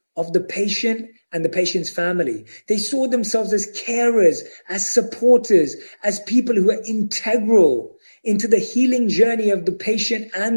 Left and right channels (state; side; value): inverted; both; correlation -1.00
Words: of the patient and the patient's family. They saw themselves as carers, as supporters, as people who are integral into the healing journey of the patient